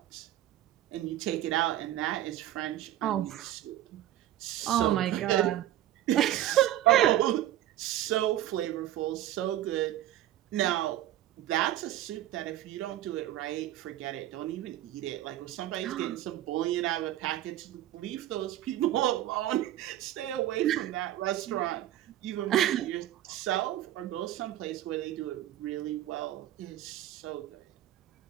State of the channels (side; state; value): left; quieter; 13.3 dB